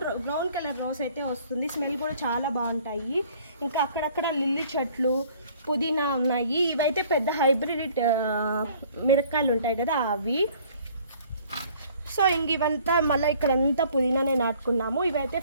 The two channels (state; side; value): inverted; both; correlation -0.56